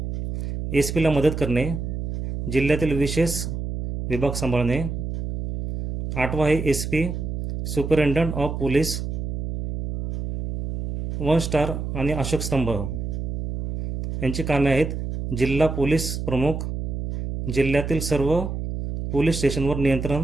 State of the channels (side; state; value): right; noise; hum, 4 dB below the sound